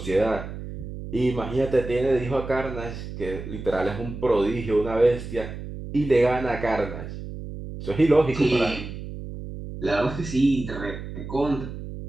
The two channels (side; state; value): right; noise; hum, 9 dB below the sound